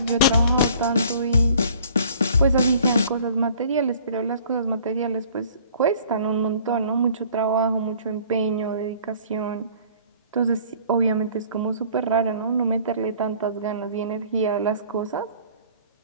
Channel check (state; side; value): inverted; both; correlation -0.53